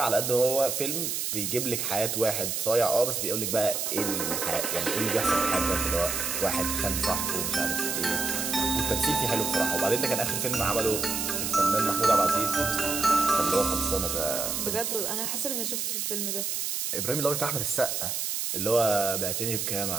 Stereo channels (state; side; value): noise; right; hiss, 1 dB below the sound